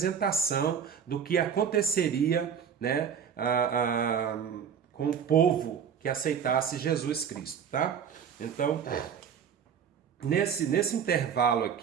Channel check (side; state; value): left; quieter; 7.6 dB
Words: do que aconteceria, né, com o povo que aceitasse Jesus Cristo, tá? Então, nesse intervalo